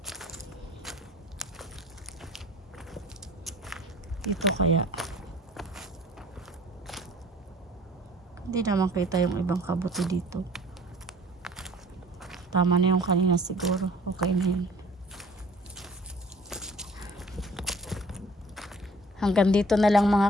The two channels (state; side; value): normal; both; correlation 0.51